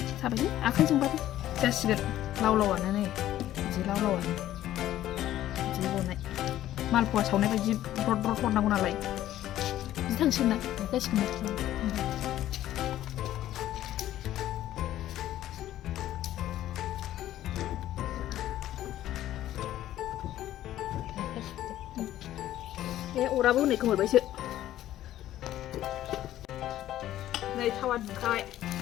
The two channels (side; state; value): right; quieter; 13.2 dB